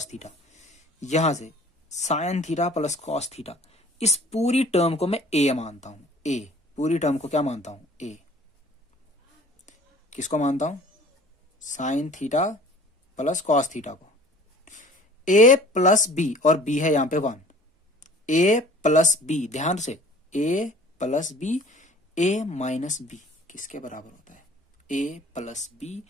theta, यहां से sine theta plus cos theta, इस पूरी टर्म को मैं ए मानता हूं। ए पूरी टर्म को क्या मानता हूं, ए। किसको मानता हूं, sine theta plus cos theta को। ए प्लस बी, और बी है यहां पे 1, ए प्लस बी, ध्यान से, ए plus B, A minus B किसके बराबर होता है, ए plus B,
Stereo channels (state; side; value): normal; both; correlation 0.49